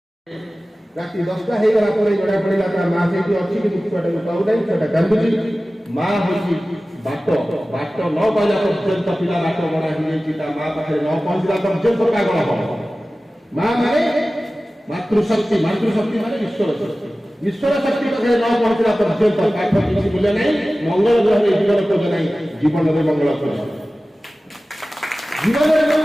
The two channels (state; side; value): normal; both; correlation 0.96